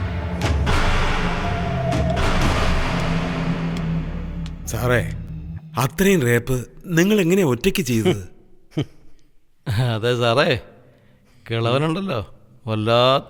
സാറേ, അത്രയും റേപ്പ് നിങ്ങൾ എങ്ങനെയാ ഒറ്റയ്ക്ക് ചെയ്തത്? അതെ സാറേ, കിളവനുണ്ടല്ലോ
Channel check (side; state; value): both; identical; correlation 1.00